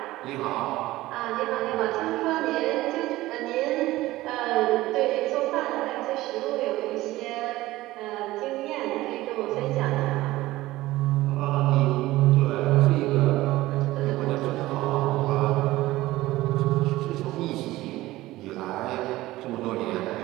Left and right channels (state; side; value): quieter; left; 17.4 dB